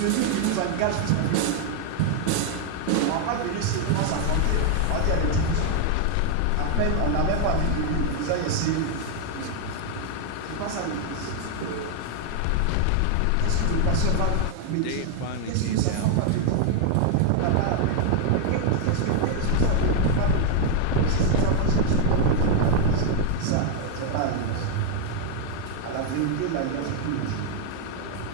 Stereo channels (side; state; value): both; different; correlation 0.00